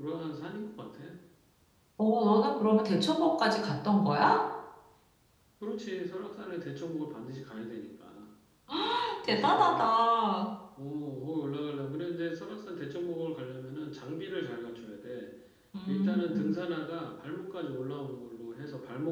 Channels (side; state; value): both; identical; correlation 1.00